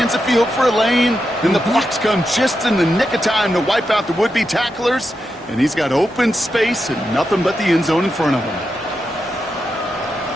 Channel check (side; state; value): both; normal; correlation 0.87